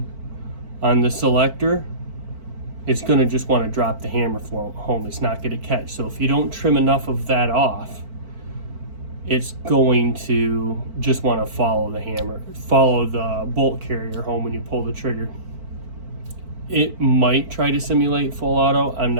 on the selector, it's going to just want to drop the hammer home. It's not going to catch. So if you don't trim enough of that off, it's going to just want to follow the hammer, follow the bolt carrier home when you pull the trigger. It might try to simulate full auto. I'm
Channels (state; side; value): late; left; 4.5 ms